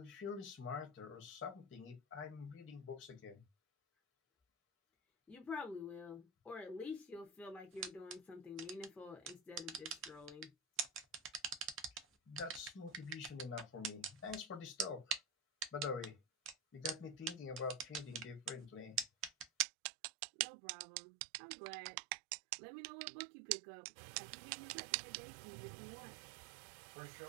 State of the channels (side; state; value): left; drops out; at 19.7 s